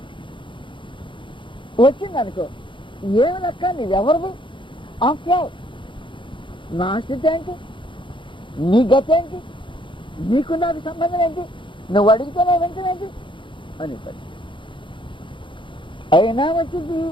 వచ్చింది అనుకో, ఏమి లెక్క, నీవెవరివి? ఆఫ్టర్ ఆల్ నా స్థితి ఏంటి, నీ గతి ఏంటి, నీకు నాకు సంబంధం ఏంటి, నువ్వు అడిగితేనే వెంటనేంటి అని పడి అయినా వచ్చింది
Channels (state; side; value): late; right; 0.24 ms